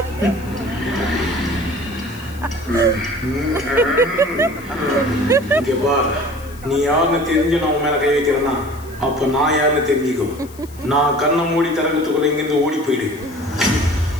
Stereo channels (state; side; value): noise; left; hiss, 23 dB below the sound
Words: நீ யாருன்னு தெரிஞ்சு நான் உன் மேல கை வைக்கிறேன்னா அப்ப நான் யாருன்னு தெரிஞ்சுக்கோ. நான் கண்ணை மூடி திறக்கத்துக்குள்ள இங்கிருந்து ஓடி போயிடு.